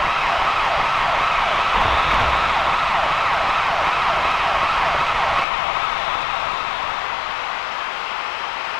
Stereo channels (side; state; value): right; drops out; at 5.5 s